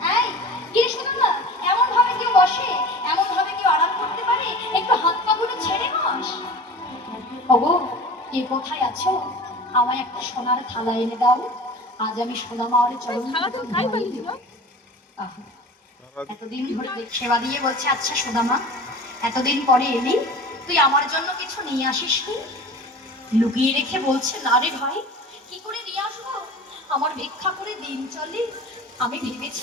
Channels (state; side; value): normal; both; correlation 0.38